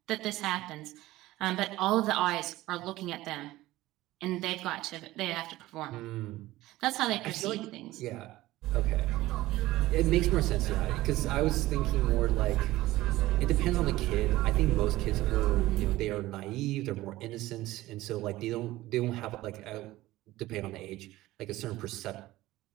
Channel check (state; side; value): quieter; left; 17.1 dB